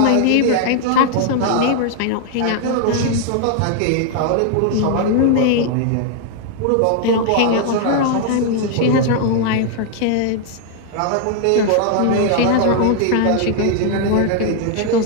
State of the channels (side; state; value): both; different; correlation 0.00